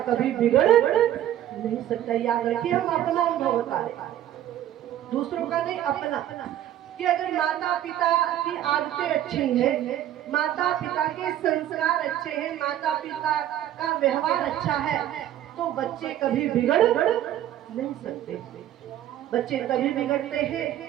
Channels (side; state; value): left; quieter; 12.0 dB